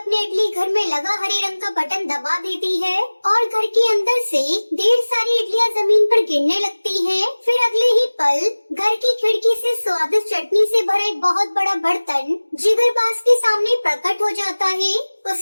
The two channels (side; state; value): both; inverted; correlation -1.00